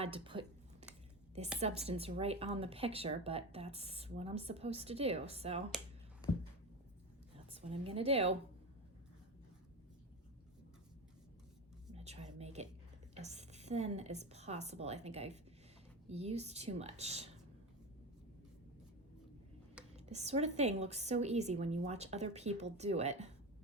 to put this substance right on the picture, but that's what I'm supposed to do. So that's what I'm gonna do. try to make it as thin as possible. I think I've used too much. This sort of thing looks so easy when you watch other people do it,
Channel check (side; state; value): both; normal; correlation 0.22